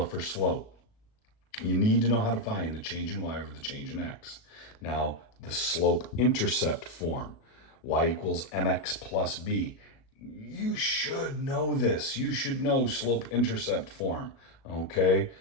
for slope. You need to know how to find the change in y over the change in x. Now, the slope-intercept form, y equals mx plus b. You should know this. You should know slope-intercept form, okay?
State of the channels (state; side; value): late; right; 37 ms